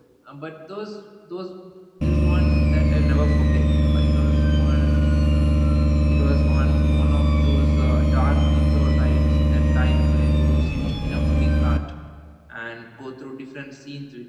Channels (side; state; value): both; identical; correlation 1.00